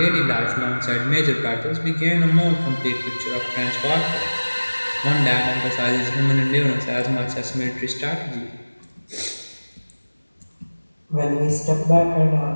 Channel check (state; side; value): inverted; both; correlation -1.00